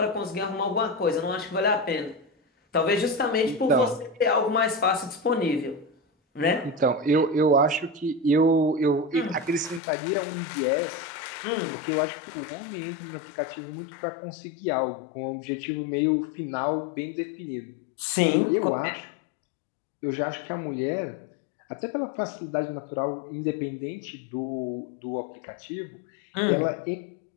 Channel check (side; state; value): right; drops out; at 9.8 s